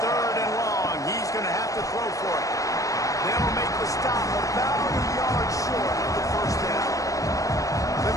and long, he's going to have to throw for it. They'll make the stop about a yard short of the first down. The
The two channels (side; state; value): right; late; 0.16 ms